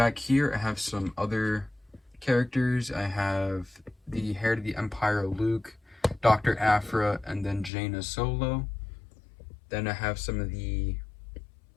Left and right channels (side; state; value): right; drops out; at 7.7 s